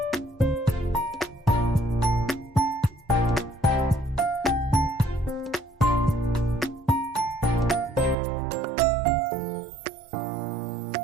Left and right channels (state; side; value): drops out; left; at 8.2 s